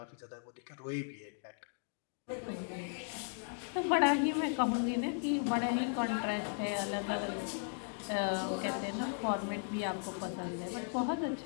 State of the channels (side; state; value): right; silent; 53 dB below the other